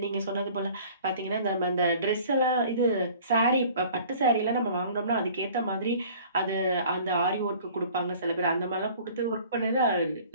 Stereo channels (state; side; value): inverted; both; correlation -0.49